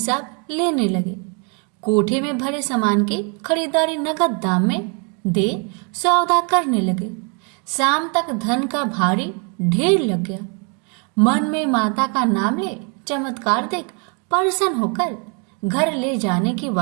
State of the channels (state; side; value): quieter; left; 36.2 dB